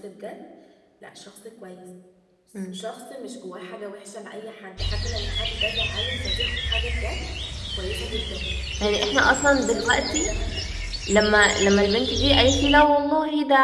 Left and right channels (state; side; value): identical; both; correlation 1.00